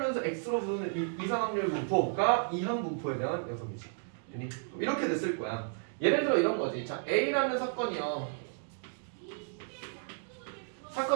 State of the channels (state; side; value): silent; left; digital silence